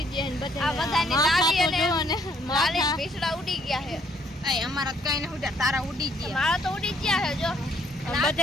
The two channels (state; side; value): normal; both; correlation 0.66